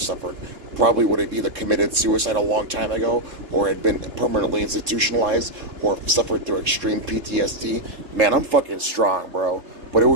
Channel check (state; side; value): late; left; 3.7 ms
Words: probably would have either committed suicide a long time ago, or had been permanently institutionalized, or suffered through extreme PTSD. Man, I'm fucking strong, bro. But it